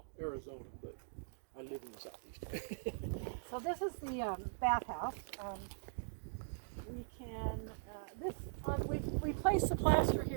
Arizona, but I live in the southeast. So this is the bathhouse. We can, we replace the plaster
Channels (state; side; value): silent; left; digital silence